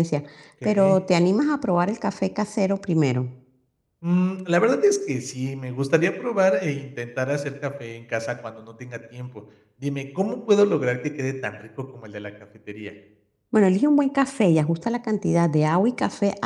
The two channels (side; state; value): both; identical; correlation 1.00